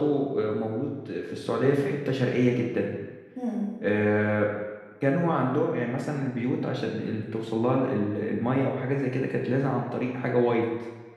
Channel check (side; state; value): both; identical; correlation 1.00